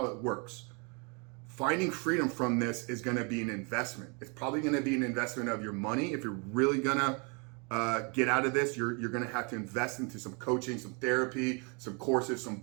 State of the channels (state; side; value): quieter; left; 33.0 dB